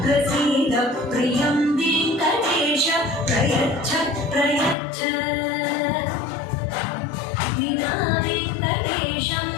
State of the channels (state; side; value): drops out; right; at 4.8 s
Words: प्रसीद प्रियं वेङ्कटेश प्रयच्छ प्रयच्छ विना वेङ्कटेशं